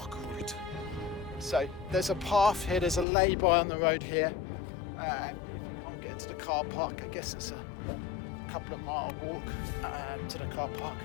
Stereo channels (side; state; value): right; drops out; at 3.1 s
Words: route. So there's a path here, there's a lay-by on the road here. If you can't get to the car park, I guess it's a couple of mile walk to the car park.